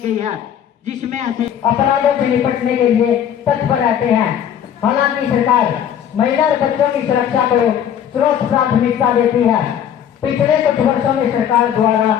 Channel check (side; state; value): right; quieter; 9.3 dB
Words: है, जिसमें ऐसे अपराधों से निपटने के लिए तत्पर रहते हैं। हालांकि सरकार महिला और बच्चों की सुरक्षा को सर्वोच्च प्राथमिकता देती है। पिछले कुछ वर्षों में सरकार द्वारा